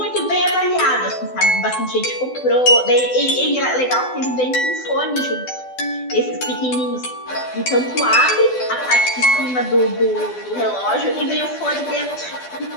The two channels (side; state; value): right; late; 12 ms